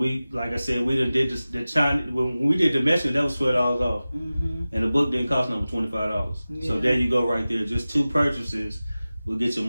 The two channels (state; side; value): inverted; both; correlation -0.96